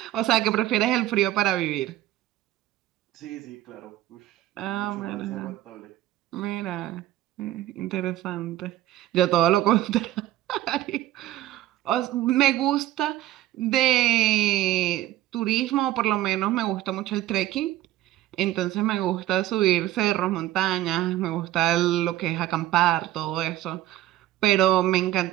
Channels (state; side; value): quieter; left; 14.6 dB